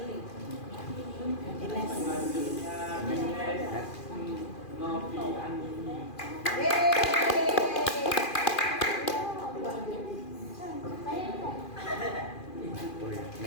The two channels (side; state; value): right; late; 2.4 ms